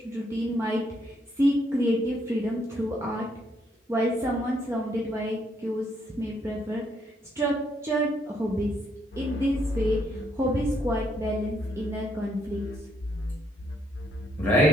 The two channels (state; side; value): normal; both; correlation 0.72